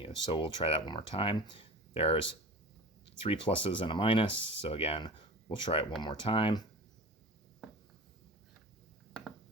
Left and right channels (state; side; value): normal; both; correlation 0.35